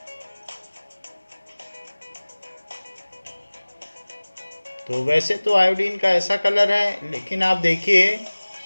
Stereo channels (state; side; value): inverted; both; correlation -1.00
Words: तो वैसे तो आयोडीन का ऐसा कलर है, लेकिन आप देखिए